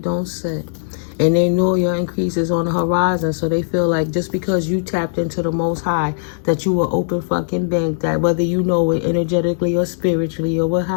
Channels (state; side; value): silent; right; 66 dB below the other